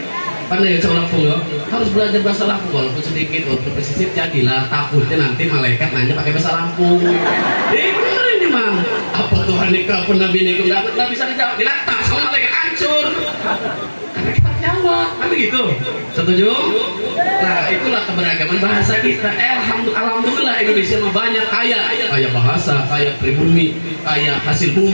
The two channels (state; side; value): inverted; both; correlation -1.00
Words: Pandai ya Lampung ya, harus belajar bahasa Lampung walaupun sedikit, walaupun pesisir jadilah. Takutnya nanti malaikat nanya pakai bahasa Lampung. Bener ini mang. Apa Tuhan nikah pun Nabi nikah nggak bisa dijawab, diletak sama malaikat hancur. Karena kita jawab, kan begitu. Setuju? Nah, itulah keberagaman bahasa kita. Alhamdulillah Indonesia mah banyak kaya bahasa, kaya pribumi, kaya hasil